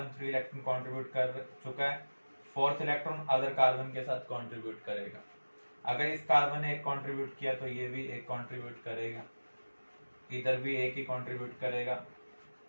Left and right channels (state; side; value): inverted; both; correlation -1.00